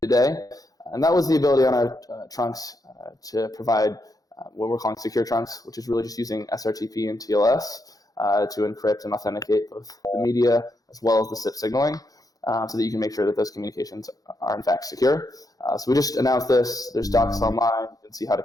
today, and that was the ability on our trunks to provide what we're calling secure trunks, which is really just using SRTP and TLS to encrypt and authenticate both the media as well as the SIP signaling, so that you can make sure that those communications are in fact secure. So we just announced this. There's docs online. You can see how to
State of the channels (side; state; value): right; late; 0.17 ms